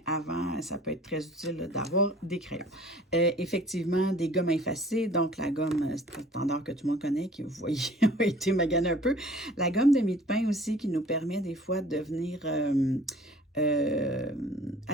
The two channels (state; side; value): normal; both; correlation 0.50